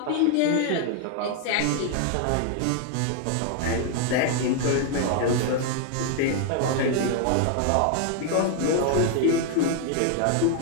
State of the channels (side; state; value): both; different; correlation 0.00